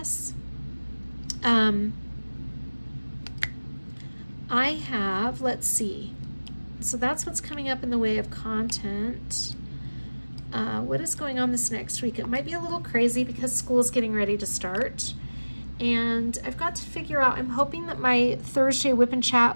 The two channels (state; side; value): inverted; both; correlation -1.00